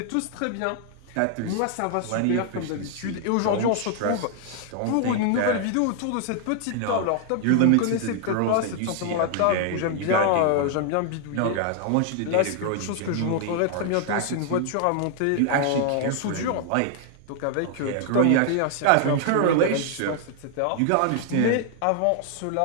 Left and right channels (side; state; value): both; different; correlation 0.00